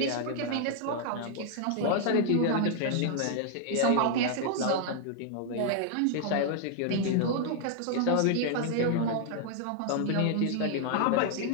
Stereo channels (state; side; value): different; both; correlation 0.00